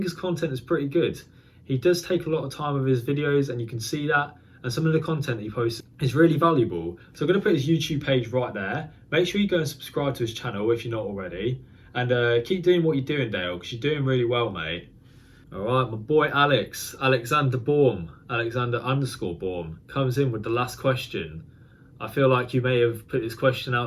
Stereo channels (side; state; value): both; identical; correlation 1.00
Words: his content is pretty good. He does take a lot of time with his videos, and you can see that. And some of the content that he posts is really valuable. So I'm going to put his YouTube page right there. Make sure you go and subscribe to his channel if you're not already. And keep doing what you're doing, Dale, because you're doing really well, mate. All right, my boy Alexander Baum, Alexander_Baum, comes in with the last question. I feel like you may have put this question